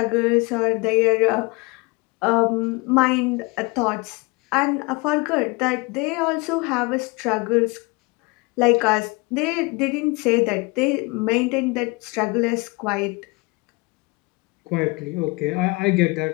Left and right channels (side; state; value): right; quieter; 26.7 dB